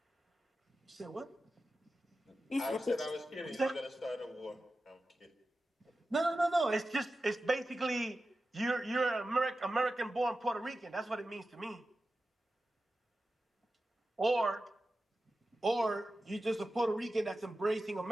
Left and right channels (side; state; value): both; normal; correlation 0.93